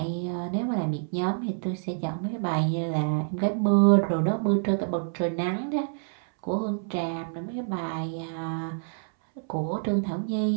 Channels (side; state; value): left; silent; 60 dB below the other